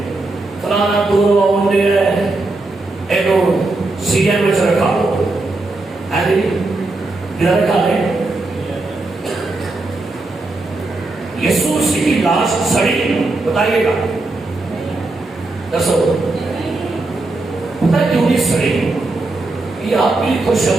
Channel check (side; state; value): left; quieter; 3.1 dB